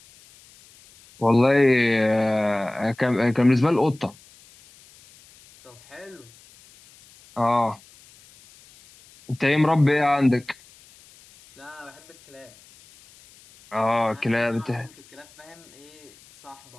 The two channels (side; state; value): left; noise; hiss, 26 dB below the sound